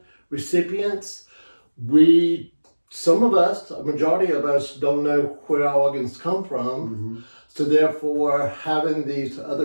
recipients, some of us, a majority of us, don't know where our organs come from. Mm-hmm. So therefore, having these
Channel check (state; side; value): inverted; both; correlation -1.00